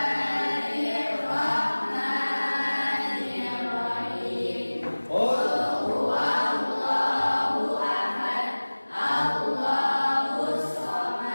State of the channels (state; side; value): inverted; both; correlation -1.00